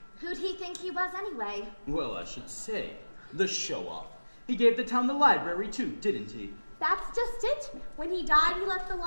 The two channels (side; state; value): both; inverted; correlation -1.00